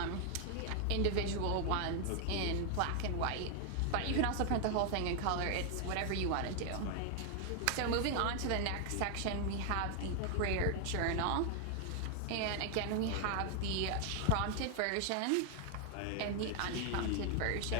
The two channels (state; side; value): different; both; correlation 0.00